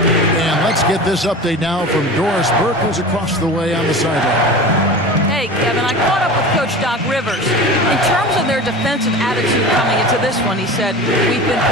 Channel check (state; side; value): normal; both; correlation 0.33